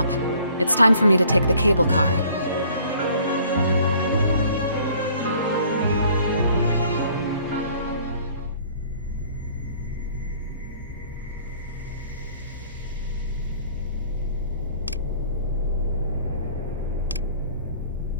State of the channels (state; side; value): inverted; both; correlation -0.55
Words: it's time for me to take the cable car.